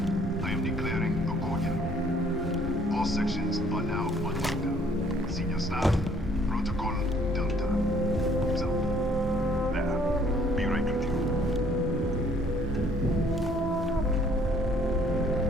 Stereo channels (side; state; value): both; normal; correlation 0.61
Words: I am declaring a cordial. All sections are now on lockdown. Senior staff, protocol Delta. So, there. Be right with you.